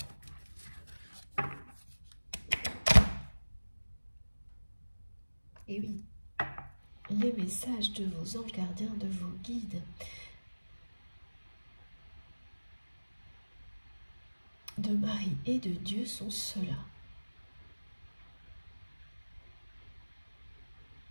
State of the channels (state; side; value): inverted; both; correlation -1.00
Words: Et oui, les messages de vos anges gardiens, de vos guides, de Marie et de Dieu sont ceux-là.